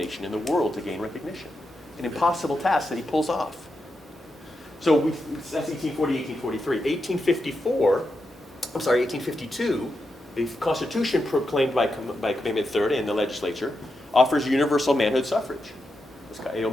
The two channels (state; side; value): normal; both; correlation 0.86